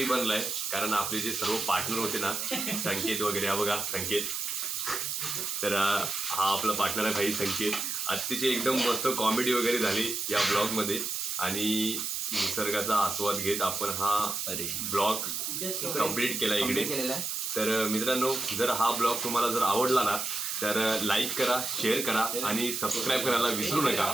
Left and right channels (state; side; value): noise; right; hiss, 2 dB below the sound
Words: बनला आहे. कारण आपले जे सर्व पार्टनर होते ना संकेत वगैरे. हा बघा संकेत. तर हा आपला पार्टनर आहे भाई संकेत. अतिशय एकदम मस्त कॉमेडी वगैरे झाली या ब्लॉगमध्ये आणि निसर्गाचा आस्वाद घेत आपण हा ब्लॉग कंप्लीट केला इकडे. केलेला आहे. तर मित्रांनो जर हा ब्लॉग तुम्हाला जर आवडला ना तर लाईक करा, शेअर करा आणि सबस्क्राईब करायला विसरू नका.